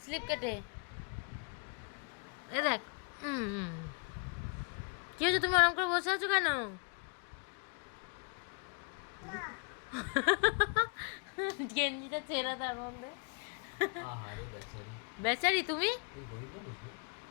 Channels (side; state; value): right; quieter; 37.1 dB